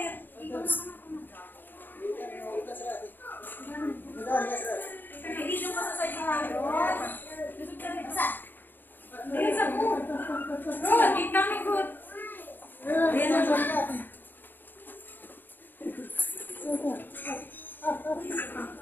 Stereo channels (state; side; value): late; right; 0.092 ms